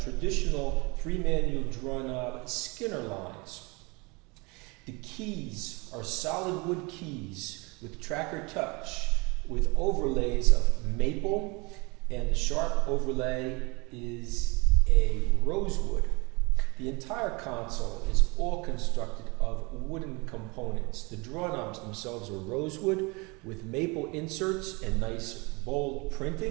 traditional 3-manual draw knob Skinner lines. The keys are solid wood keys with tracker touch with overlays of maple, and the sharp overlay is a rosewood. The entire console is all constructed of wooden components. The draw knobs themselves are rosewood with maple inserts and nice bold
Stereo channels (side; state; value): left; quieter; 27.5 dB